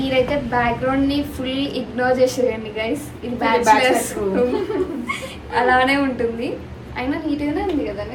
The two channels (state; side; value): identical; both; correlation 1.00